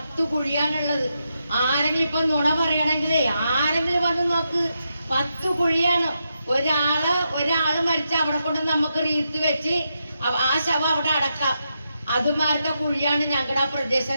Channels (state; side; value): inverted; both; correlation -0.84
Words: കുഴിയാണുള്ളത്. ആരെങ്കിലും ഇപ്പൊ നുണ പറയണമെങ്കിലേ ആരെങ്കിലും വന്ന് നോക്ക്, 10 കുഴിയാണ്. ഒരാള് മരിച്ച അവിടെ കൊണ്ട് നമുക്ക് റീത്ത് വെച്ച് ആ ശവം അവിടെ അടക്കാം. അതുമാരുടെ കുഴിയാണ് ഞങ്ങളുടെ ആ പ്രദേശം